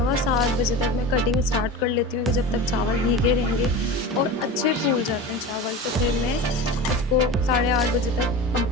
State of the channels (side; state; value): both; normal; correlation 0.31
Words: बजे तक मैं कटिंग स्टार्ट कर लेती हूँ कि जब तक चावल भीगे रहेंगे और अच्छे फूल जाते हैं चावल, तो फिर मैं उसको 8:30 बजे तक